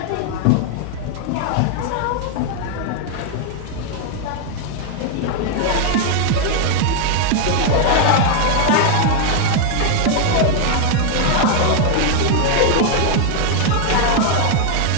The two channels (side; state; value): both; different; correlation 0.00